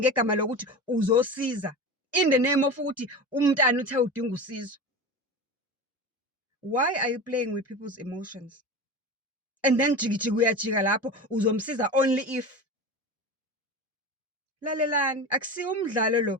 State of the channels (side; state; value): both; normal; correlation 0.28